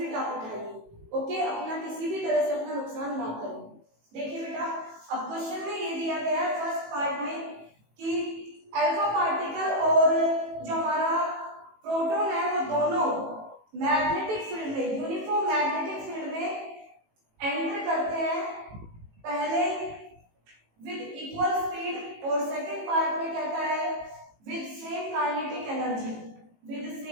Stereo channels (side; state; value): left; late; 18 ms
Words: आप उठाइए, ओके। अपना किसी भी तरह से अपना नुकसान ना करें। देखिए बेटा, अब क्वेश्चन में ये दिया गया है फर्स्ट पार्ट में कि अल्फा पार्टिकल और जो हमारा प्रोटॉन है वो दोनों मैग्नेटिक फील्ड में, यूनिफॉर्म मैग्नेटिक फील्ड में एंटर करते हैं, पहले विद इक्वल स्पीड और सेकंड पार्ट में कहता है with same kinetic energy, with